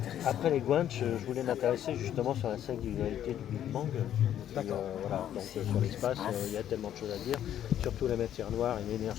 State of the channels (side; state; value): right; quieter; 10.8 dB